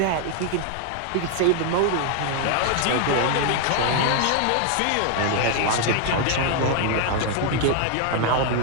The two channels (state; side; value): different; both; correlation 0.00